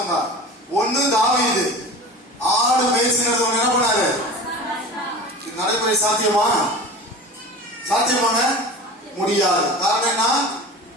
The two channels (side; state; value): both; normal; correlation 0.35